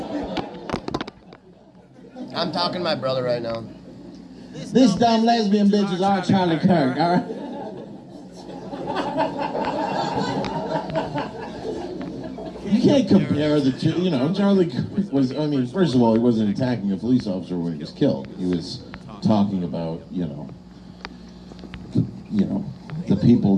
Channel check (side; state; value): both; identical; correlation 1.00